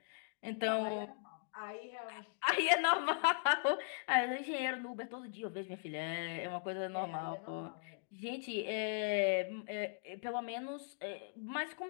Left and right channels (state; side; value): silent; right; digital silence